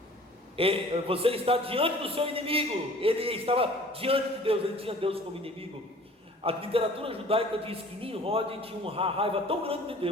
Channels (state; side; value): normal; both; correlation 0.49